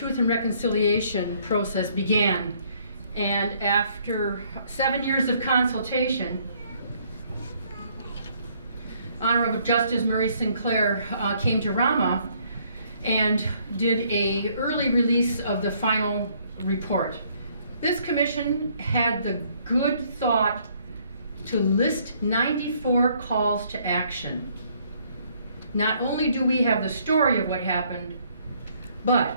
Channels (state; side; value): inverted; both; correlation -0.66